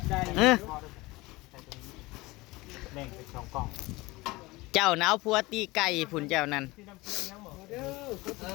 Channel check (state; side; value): quieter; right; 21.6 dB